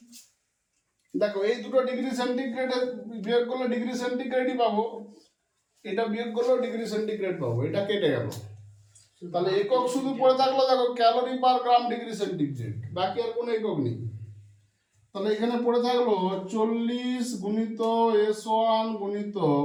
দেখো এই দুটো ডিগ্রি সেন্টিগ্রেডের বিয়োগ করলে ডিগ্রি সেন্টিগ্রেডই পাবো, এটা বিয়োগ করলেও ডিগ্রি সেন্টিগ্রেড পাবো, এটা কেটে গেল। তাহলে একক শুধু পড়ে থাকলো দেখো calorie per gram degree centigrade, বাকি আর কোনো একক নেই। তাহলে এখানে পড়ে থাকলো 40 গুণিত s1 গুণিত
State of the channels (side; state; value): both; identical; correlation 1.00